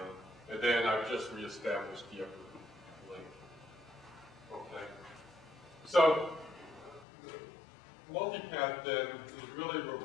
And then I've just reestablished the upper link. Okay. So, multipath then is really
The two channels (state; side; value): drops out; right; at 7.1 s